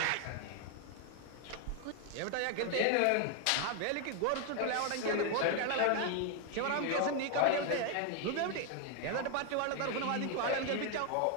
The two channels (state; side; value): different; both; correlation 0.01